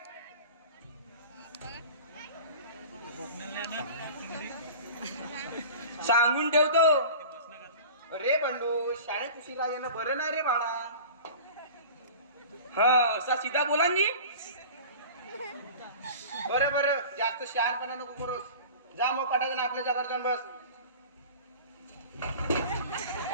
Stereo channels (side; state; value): both; inverted; correlation -0.39